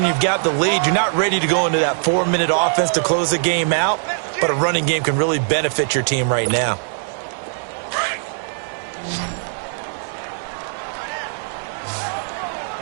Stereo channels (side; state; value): left; silent; digital silence